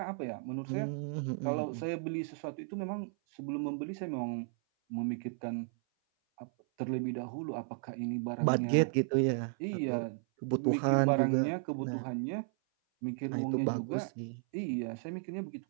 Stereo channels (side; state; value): left; silent; 55 dB below the other